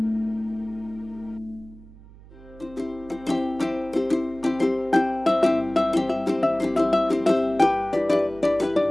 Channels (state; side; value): noise; right; hum, 21 dB below the sound